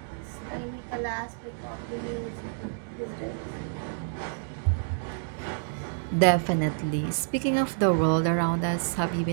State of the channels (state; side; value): silent; left; digital silence